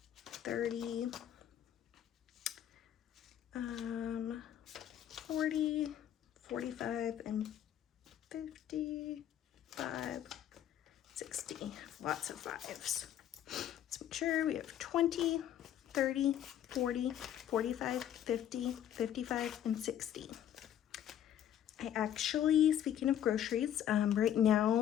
30, 40, 45, and 55, 60. Lots of fives. Let's make sure we have 20, 30, 40, 45, 50, 55, and 60. I actually, speaking of groceries, right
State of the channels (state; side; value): quieter; right; 10.6 dB